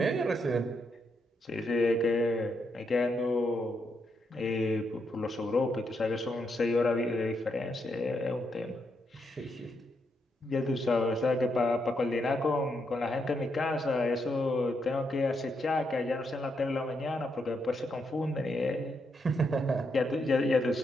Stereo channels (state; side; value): normal; both; correlation 0.80